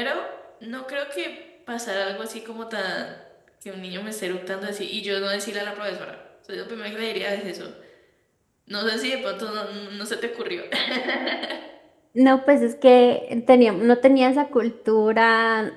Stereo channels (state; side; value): identical; both; correlation 1.00